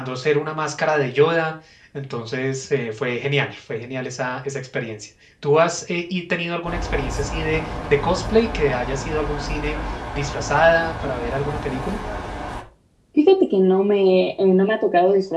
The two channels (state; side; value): identical; both; correlation 1.00